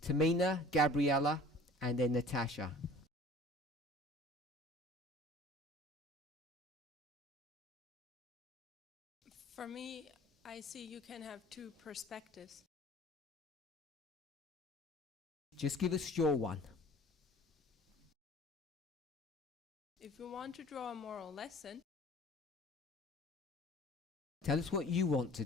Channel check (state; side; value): normal; both; correlation 0.48